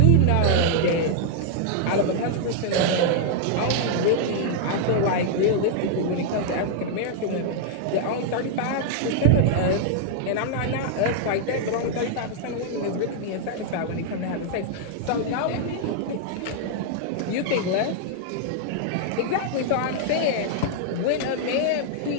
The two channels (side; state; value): both; different; correlation -0.01